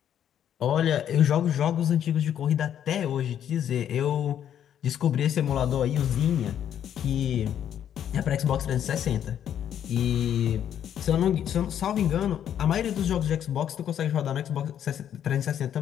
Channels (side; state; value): right; quieter; 9.8 dB